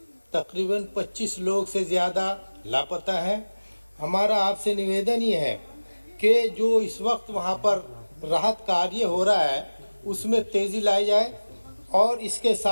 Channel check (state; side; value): inverted; both; correlation -1.00